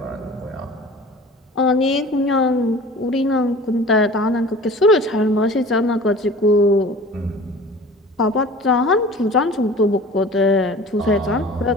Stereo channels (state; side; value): normal; both; correlation 0.42